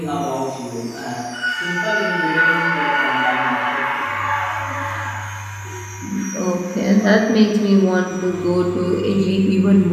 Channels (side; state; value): both; identical; correlation 1.00